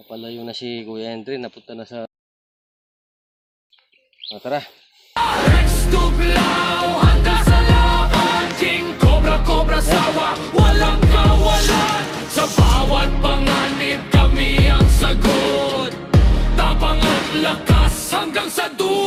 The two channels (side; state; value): both; identical; correlation 1.00